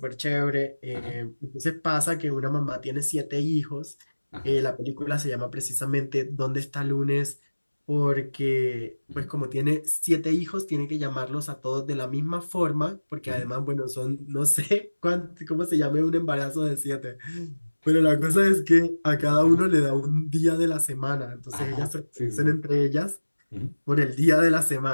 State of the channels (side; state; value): both; inverted; correlation -1.00